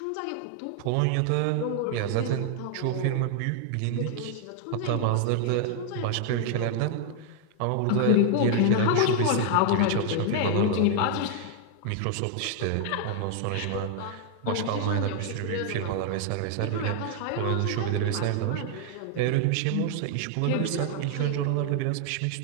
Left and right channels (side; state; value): both; different; correlation 0.00